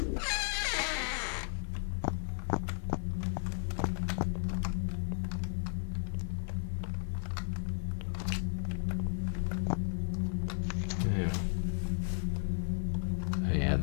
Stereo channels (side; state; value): right; silent; digital silence